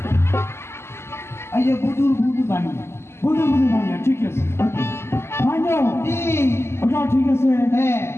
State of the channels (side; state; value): right; late; 0.12 ms